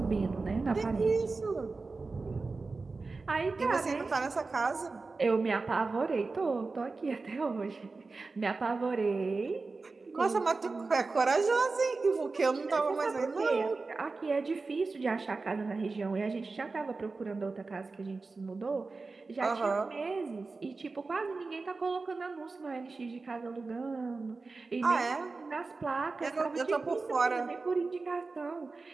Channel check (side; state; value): left; quieter; 3.9 dB